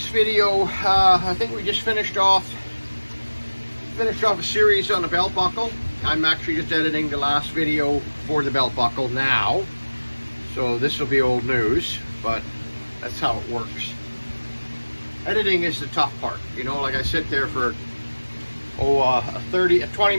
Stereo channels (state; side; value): inverted; both; correlation -1.00